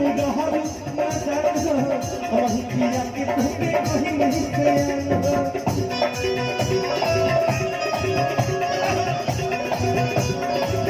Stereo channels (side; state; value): both; identical; correlation 1.00